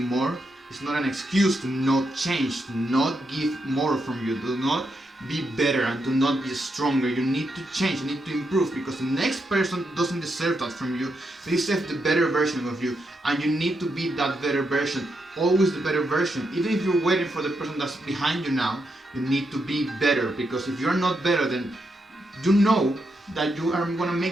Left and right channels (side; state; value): both; normal; correlation 0.82